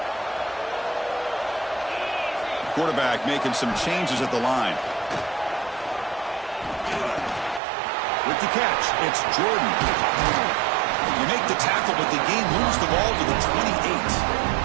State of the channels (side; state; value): left; drops out; at 7.6 s